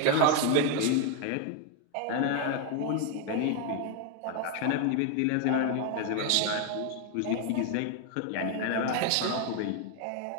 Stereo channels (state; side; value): different; both; correlation 0.01